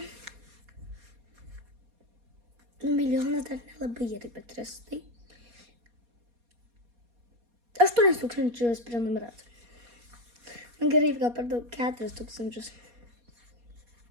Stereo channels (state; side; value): late; left; 4.2 ms